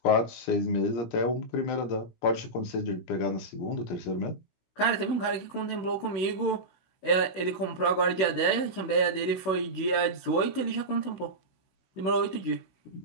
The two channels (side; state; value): right; late; 16 ms